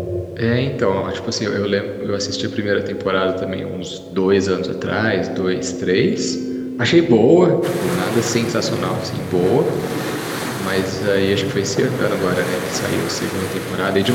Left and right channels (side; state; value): both; identical; correlation 1.00